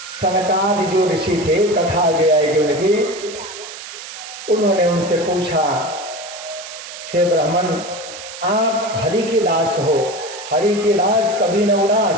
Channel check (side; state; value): right; noise; hiss, 12 dB below the sound